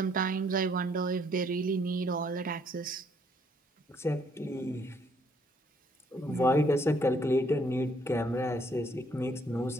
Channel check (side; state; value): both; normal; correlation 0.67